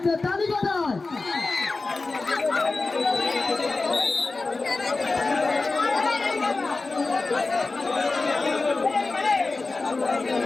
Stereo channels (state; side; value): quieter; right; 3.6 dB